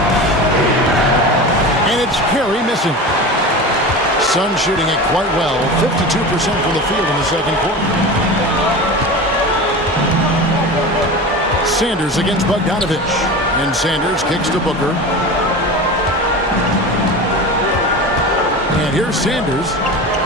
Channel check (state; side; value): normal; both; correlation 0.30